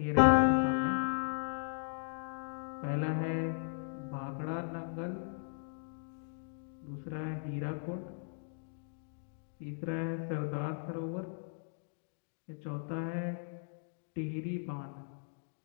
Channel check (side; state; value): right; silent; digital silence